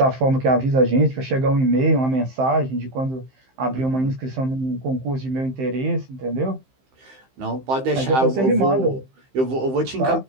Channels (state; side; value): late; left; 15 ms